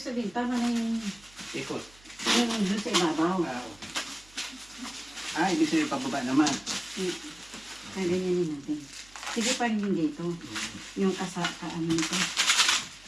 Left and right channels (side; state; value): right; noise; hum, 25 dB below the sound